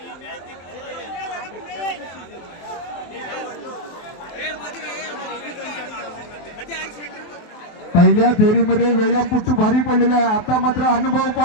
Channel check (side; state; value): right; late; 23 ms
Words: पहिल्या फेरीमध्ये व्यायामपट्टू भारी पडलेला आहे. आता मात्र अनुभव